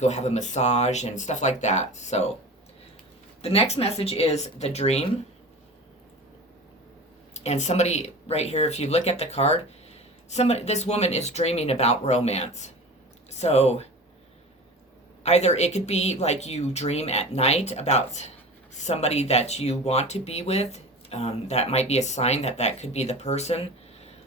have a massage and stuff like that. So the next message is the dream. And somebody right here, if you look at the card, this woman is dreaming about romance. So either it could be like you dream at night about somebody that you want to be with. That might be a sign that could be the person.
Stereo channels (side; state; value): both; normal; correlation 0.35